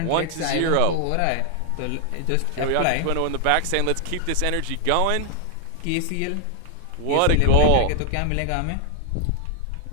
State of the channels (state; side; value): different; both; correlation 0.00